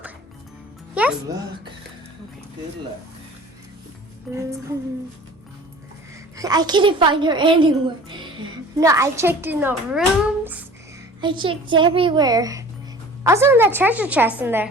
Yes? Good luck. Okay. Good luck. I couldn't find her anywhere. No, I checked in the rooms. I checked everywhere. Also in that treasure chest in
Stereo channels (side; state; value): both; normal; correlation 0.44